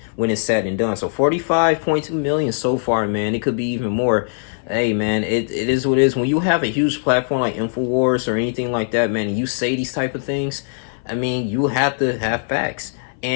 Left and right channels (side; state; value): right; silent; 57 dB below the other